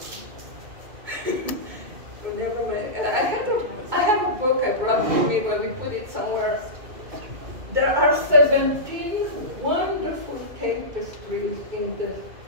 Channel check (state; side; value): late; left; 1.7 ms